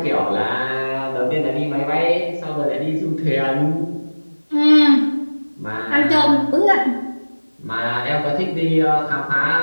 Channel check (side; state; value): both; inverted; correlation -1.00